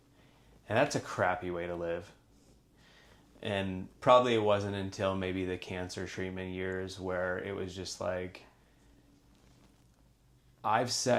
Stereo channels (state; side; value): identical; both; correlation 1.00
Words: And that's a crappy way to live. And probably it wasn't until maybe the cancer treatment years where it was just like, I've